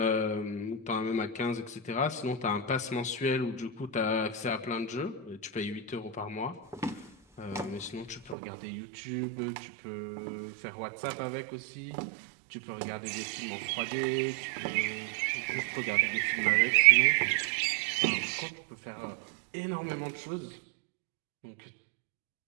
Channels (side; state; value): left; drops out; at 8.3 s